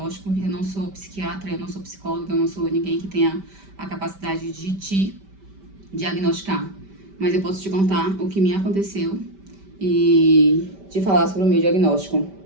eu não sou psiquiatra, eu não sou psicóloga, eu não sou ninguém que tenha a capacidade de te diagnosticar. Mas eu posso te contar o que me aconteceu e te falar sobre o meu diagnóstico.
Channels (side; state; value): left; late; 5.1 ms